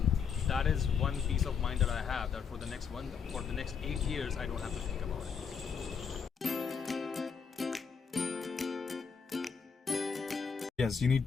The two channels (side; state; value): right; quieter; 6.3 dB